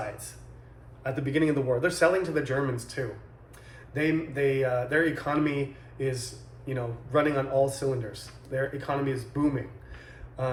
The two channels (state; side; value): identical; both; correlation 1.00